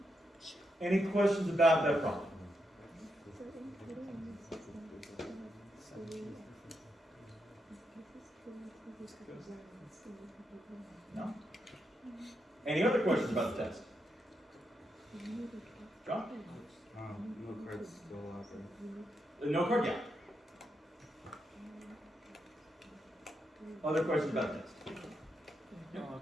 Any questions about that problem? No? Any other questions about the test? John? No cards still out there. No card, yeah. Other questions about the test? Can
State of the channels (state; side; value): normal; both; correlation 0.83